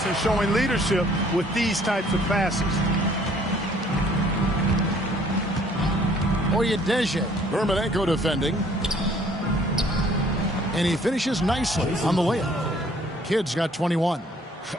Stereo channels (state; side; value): normal; both; correlation 0.59